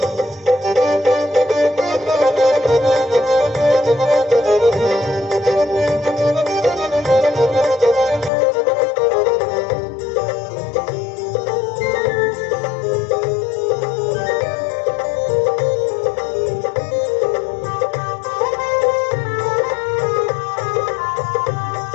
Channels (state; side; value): drops out; right; at 8.3 s